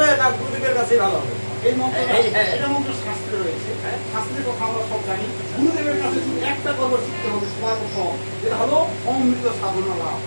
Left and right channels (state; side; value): inverted; both; correlation -1.00